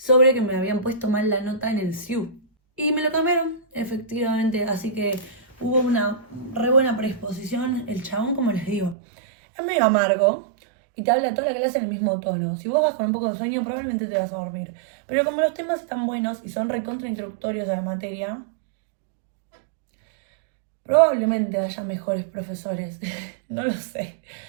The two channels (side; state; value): left; drops out; at 9.0 s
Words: que me habían puesto mal la nota en el SIU. Y me lo cambiaron, efectivamente. Así que hubo una re buena predisposición. El chabón, como les digo, es medio amargo y te habla toda la clase en el mismo tono. Si vos vas con un poco de sueño, probablemente te vas a dormir. Pero como los temas están buenos y son recontra introductorios a la materia, probablemente haya mejores profesores. No lo sé.